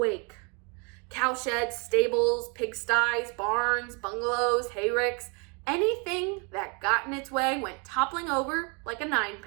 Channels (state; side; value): quieter; left; 33.5 dB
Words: Cowsheds, stables, pigsties, barns, bungalows, hayricks, anything that got in its way went toppling over like a